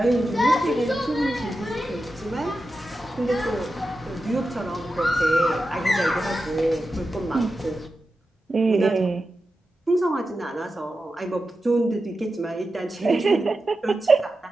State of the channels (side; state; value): both; normal; correlation 0.91